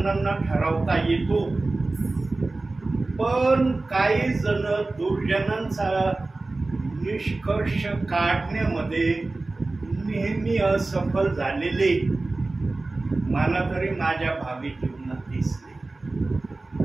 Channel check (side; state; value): left; quieter; 3.2 dB